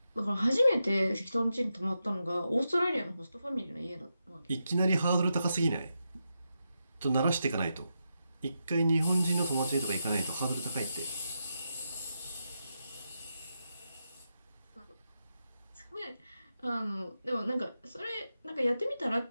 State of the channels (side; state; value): both; inverted; correlation -0.86